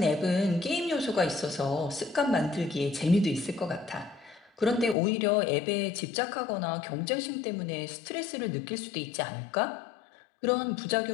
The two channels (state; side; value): drops out; right; at 5.0 s